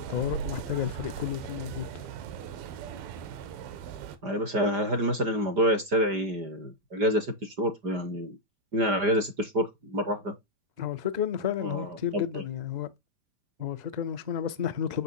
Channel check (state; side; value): late; left; 5.0 ms